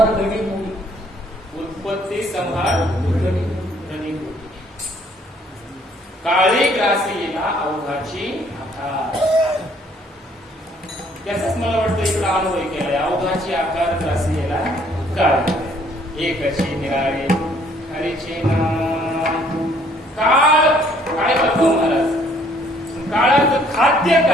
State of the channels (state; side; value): normal; both; correlation 0.62